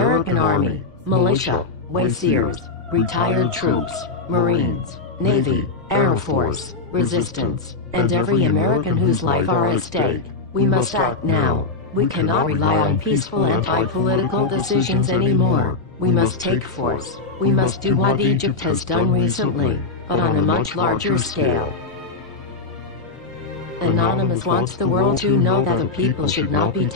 Army, militia, Wayseers, retired troops, Marines, Navy, Air Force, Resistance, and every American whose life are at stake. We must act now. We cannot rely on peaceful anti-political decisions anymore. We must take force. We must do what Egypt has done recently, but on a much larger scale. Anonymous wants the world to know that the people should not be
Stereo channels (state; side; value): quieter; right; 3.7 dB